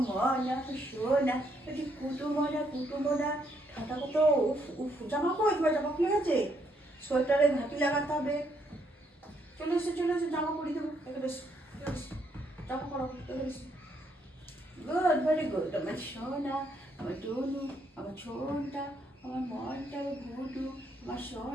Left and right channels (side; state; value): both; normal; correlation 0.73